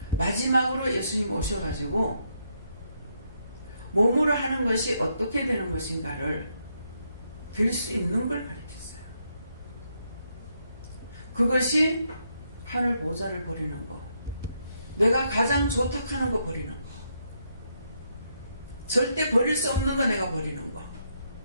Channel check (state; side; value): inverted; both; correlation -0.77